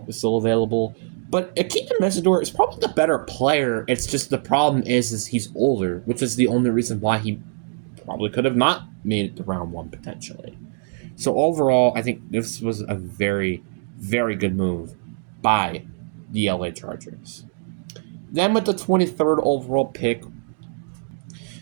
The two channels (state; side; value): silent; left; 63 dB below the other